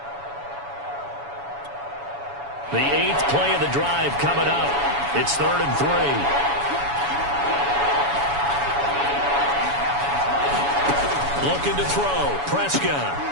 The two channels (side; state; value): left; late; 7.1 ms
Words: The 8th play of the drive coming up. It's 3rd and 3. Looking to throw. Prescott.